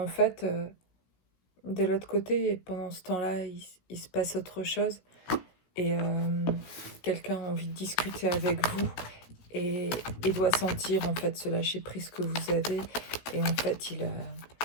fait de l'autre côté, pendant ce temps-là il se passe autre chose et quelqu'un a envie de discuter avec vous et doit sentir en fait ce lâcher prise que vous avez et en fait il a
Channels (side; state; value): right; late; 16 ms